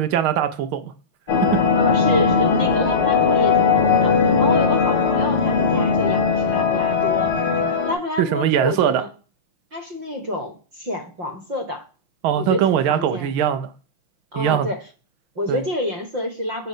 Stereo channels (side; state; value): left; late; 5.7 ms